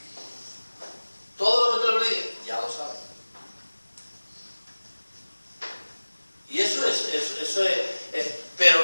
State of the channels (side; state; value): both; inverted; correlation -1.00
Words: Todo lo que te lo diga, ya lo sabe. Y eso es,